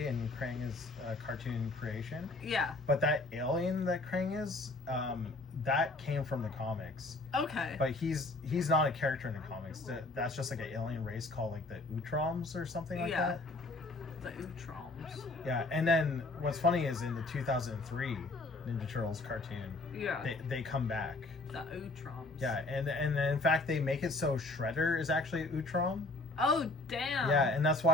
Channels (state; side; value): quieter; right; 3.1 dB